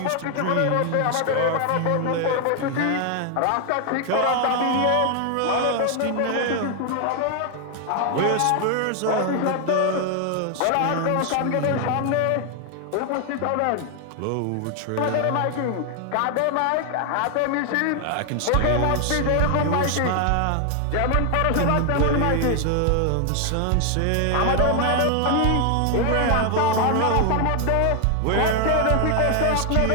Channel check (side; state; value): both; different; correlation 0.00